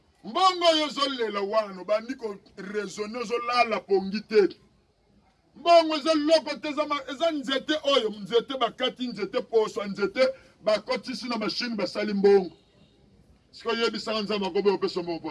Mbongo yo zolela wana bandi ko raisonner zolala pongite. Mbongo zo loko tezama eza nzete oyo nzete bakati nzete poso nzete bakotisi na machine basali mbongo. Siko yebisa nzamba ko be opeso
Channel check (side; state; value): both; identical; correlation 1.00